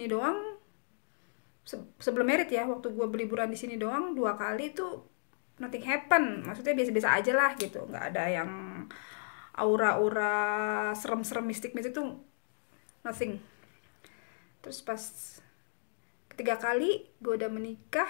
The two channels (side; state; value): right; silent; digital silence